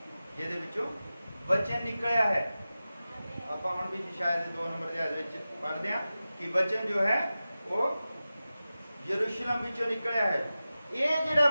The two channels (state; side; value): inverted; both; correlation -0.95